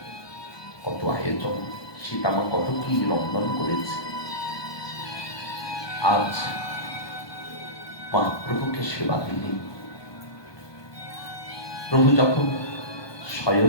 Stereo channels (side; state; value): right; late; 1.2 ms